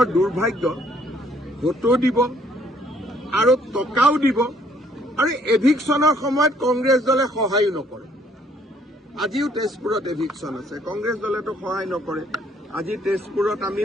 দুৰ্ভাগ্য ভোটো দিব আৰু টকাও দিব আৰু এভিকশ্যনৰ সময়ত কংগ্ৰেছ দলে সহায় নকৰে আজিও তেজপুৰত এভিকশ্যন আছে কংগ্ৰেছ দলেতো সহায় নকৰে আজি তেজপুৰত আমি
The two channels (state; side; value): normal; both; correlation 0.64